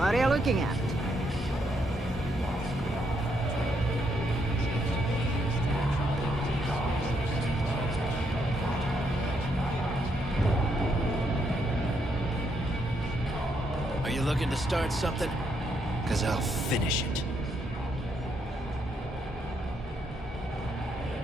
are you looking at? Are you looking to start something? Because I'll finish it.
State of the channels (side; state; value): both; normal; correlation 0.76